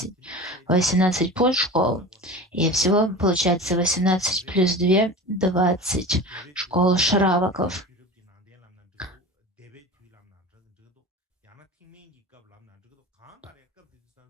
подшкол. И всего получается 18 плюс 2 – 20 школ шраваков.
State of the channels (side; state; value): both; normal; correlation 0.33